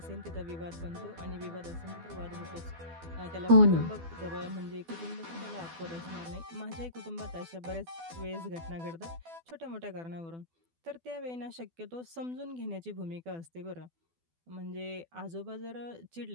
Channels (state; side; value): late; left; 12 ms